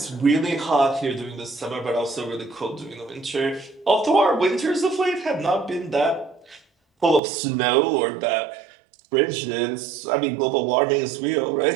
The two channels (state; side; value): drops out; left; at 7.2 s